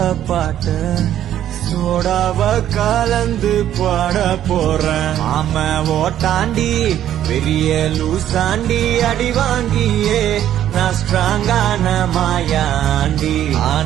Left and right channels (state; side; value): quieter; left; 11.4 dB